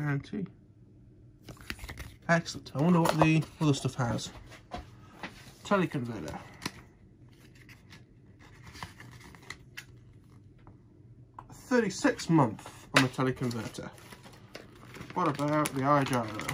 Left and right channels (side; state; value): both; identical; correlation 1.00